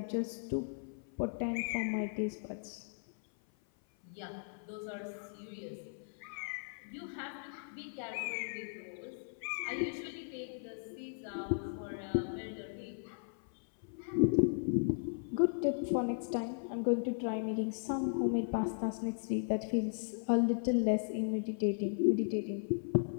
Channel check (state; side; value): silent; right; 53 dB below the other